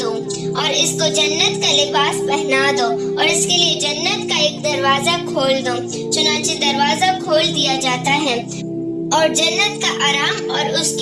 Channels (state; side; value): identical; both; correlation 1.00